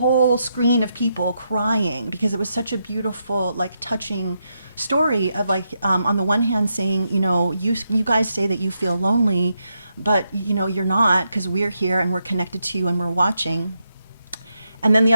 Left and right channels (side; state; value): both; inverted; correlation -0.82